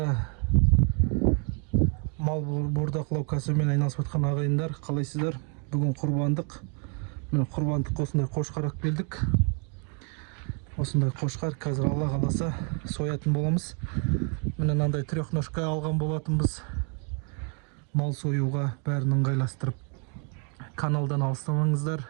мал бордақылау кәсібімен айналысып жатқан ағайындар, қалайсыздар? Бүгін құрбандық. Міне құрбандық осындай қошқар алып келдік. Осындай қошқар қазір Алла қаласа соятын боламыз. Міне мынандай трехножка алған болатынбыз. Мал союға бәрін ыңғайластырып. Каналдан алыстамаңыздар.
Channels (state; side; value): quieter; left; 38.7 dB